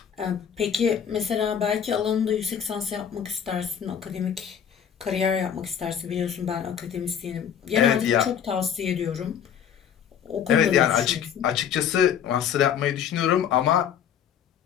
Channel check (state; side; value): quieter; right; 8.5 dB